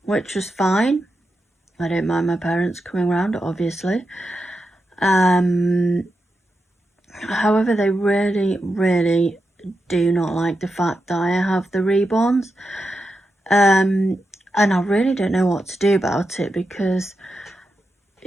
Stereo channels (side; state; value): both; normal; correlation 0.88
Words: which was fine. I don't mind my parents coming round, obviously. However, they really do not like the fact that I have the reborns. And I really don't know what to do about it, because